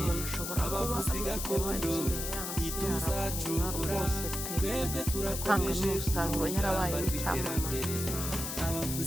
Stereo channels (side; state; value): left; noise; hiss, 4 dB below the sound